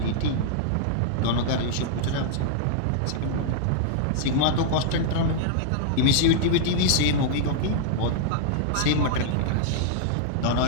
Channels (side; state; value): both; different; correlation -0.01